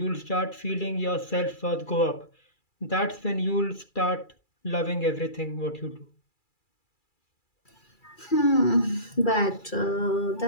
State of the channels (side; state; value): right; late; 2.3 ms